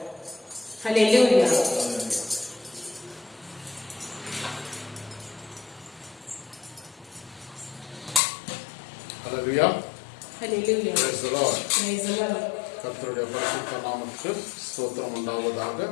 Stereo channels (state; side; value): drops out; right; at 8.2 s